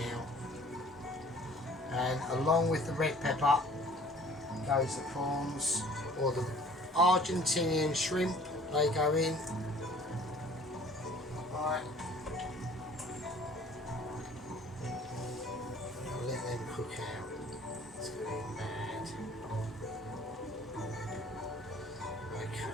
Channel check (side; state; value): both; normal; correlation 0.51